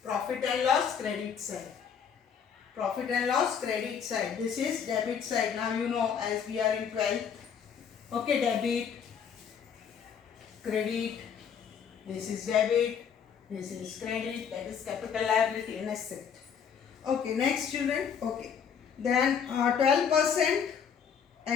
profit and loss credit side. Profit and loss credit side. This is debit side. Now you know as we are in 12th. Okay, debit, credit. This is debit. This is credit. That is capital liability and asset. Okay, next children. Okay. Then 12%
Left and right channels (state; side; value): quieter; right; 7.3 dB